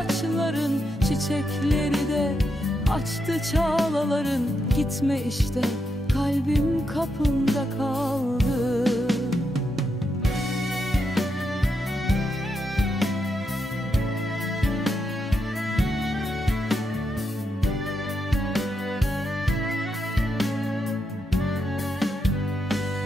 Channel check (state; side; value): normal; both; correlation 0.83